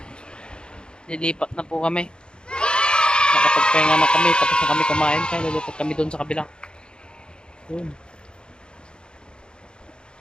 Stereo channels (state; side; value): late; right; 0.050 ms